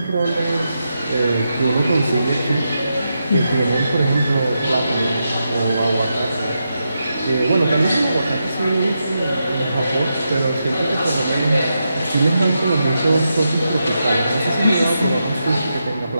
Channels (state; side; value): inverted; both; correlation -0.86